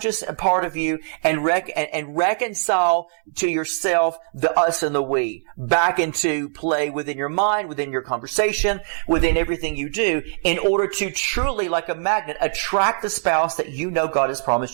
part of you and reconcile to yourself the us and the we back into play within your mind, within your conversation, within everything you do, in order to truly, like a magnet, attract the spouse that God has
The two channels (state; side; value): silent; left; 64 dB below the other